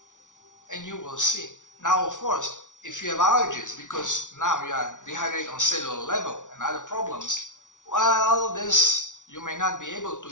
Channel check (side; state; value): right; late; 0.87 ms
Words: And you will see. Now, of course, if you have allergies, because now you are dehydrated on cellular level and other problems, well, you may not be able to